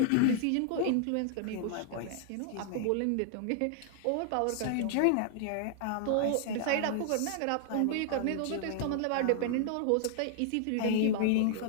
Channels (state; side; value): different; both; correlation 0.00